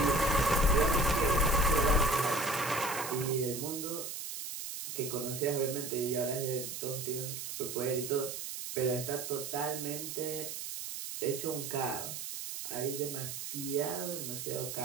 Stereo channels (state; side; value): noise; right; hiss, 7 dB below the sound